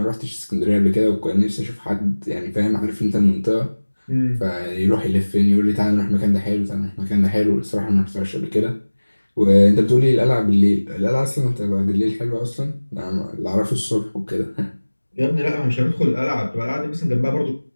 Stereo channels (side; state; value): both; inverted; correlation -1.00